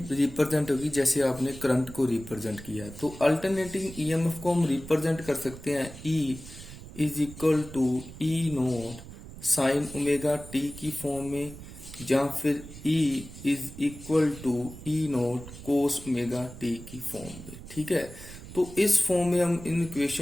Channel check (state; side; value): noise; right; rumble, 14 dB below the sound